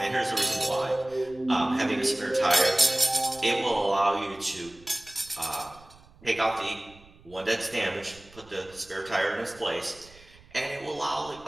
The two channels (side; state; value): right; noise; rumble, 24 dB below the sound